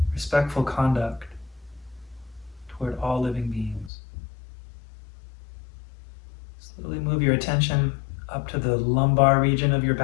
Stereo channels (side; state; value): right; drops out; at 3.9 s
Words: respectful conduct toward all living beings. Slowly move your attention up to the lumbar region of your